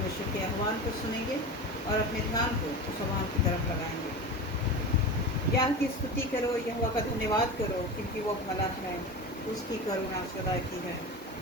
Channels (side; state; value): both; normal; correlation 0.28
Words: के आह्वान को सुनेंगे और अपने ध्यान को उस आह्वान की तरफ लगाएंगे। यहोवा की स्तुति करो, यहोवा का धन्यवाद करो, क्योंकि वो भला है, उसकी करुणा सदा की है।